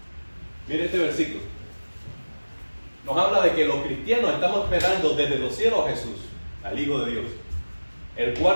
Mire este versículo. Nos habla de que los cristianos estamos esperando desde los cielos a Jesús, al Hijo de Dios, el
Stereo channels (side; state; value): both; inverted; correlation -1.00